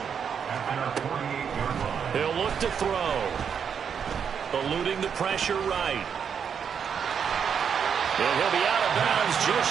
He'll look to throw. Eluding the pressure right. And he'll be out of bounds just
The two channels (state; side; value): quieter; left; 7.3 dB